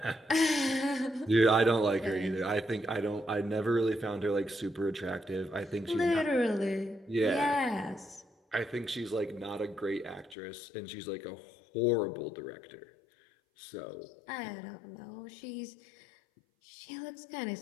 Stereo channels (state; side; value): drops out; right; at 10.4 s